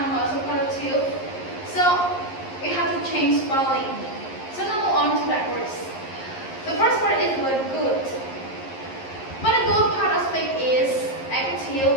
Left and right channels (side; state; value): right; late; 11 ms